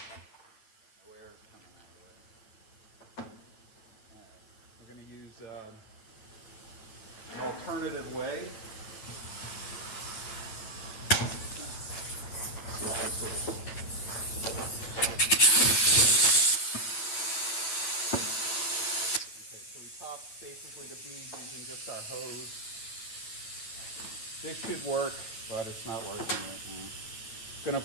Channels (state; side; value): late; right; 9.0 ms